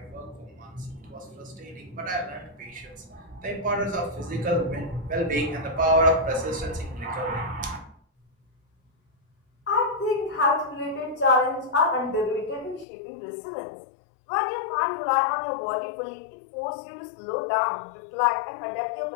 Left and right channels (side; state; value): right; drops out; at 12.9 s